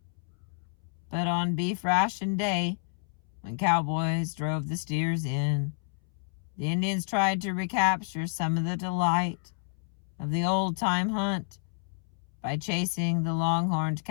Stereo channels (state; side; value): silent; right; 58 dB below the other